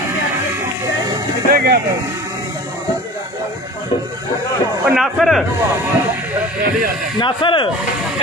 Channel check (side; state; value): both; normal; correlation 0.40